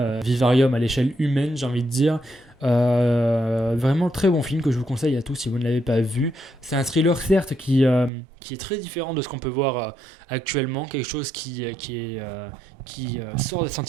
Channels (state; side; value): drops out; left; at 8.1 s